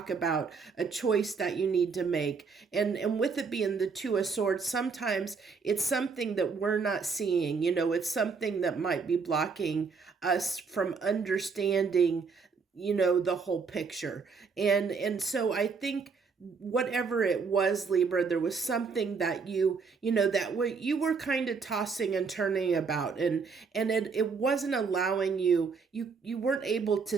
about a choice that you need to make, and with it being the Two of Swords, sometimes it's something that we're not seeing, it's something that might be blocking us from understanding, the whole picture. And so I think whatever it was, Libra, there was something that you were kind of tossing and turning about, and it wasn't allowing you weren't able to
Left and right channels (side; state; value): left; quieter; 5.2 dB